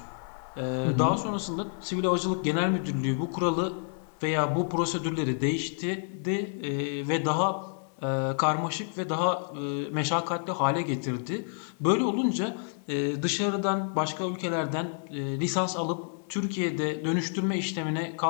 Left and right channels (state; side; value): silent; right; 59 dB below the other